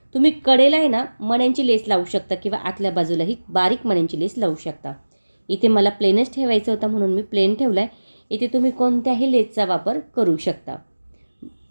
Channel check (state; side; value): inverted; both; correlation -1.00